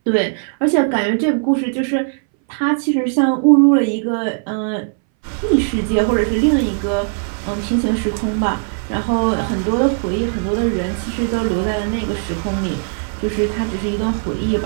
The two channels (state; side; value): silent; left; 63 dB below the other